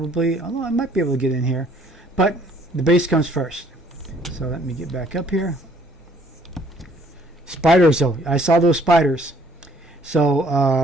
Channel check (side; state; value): both; normal; correlation 0.61